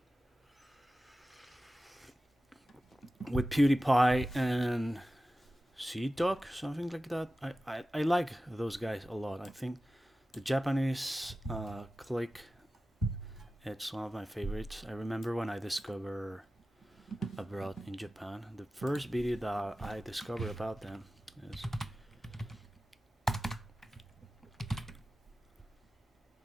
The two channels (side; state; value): both; normal; correlation 0.95